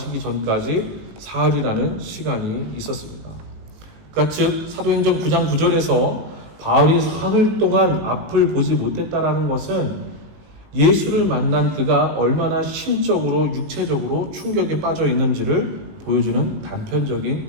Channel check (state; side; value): late; left; 19 ms